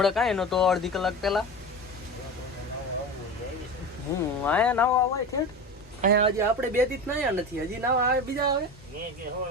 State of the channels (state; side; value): normal; both; correlation 0.28